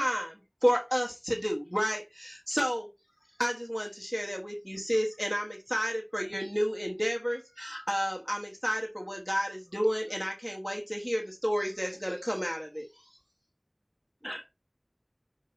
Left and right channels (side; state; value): both; identical; correlation 1.00